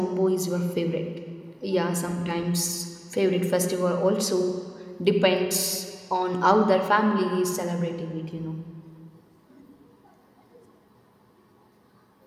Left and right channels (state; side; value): identical; both; correlation 1.00